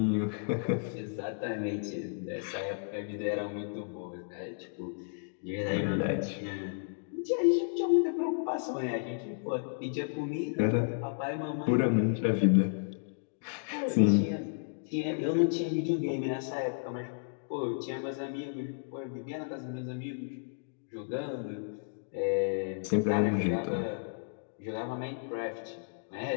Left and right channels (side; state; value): right; silent; digital silence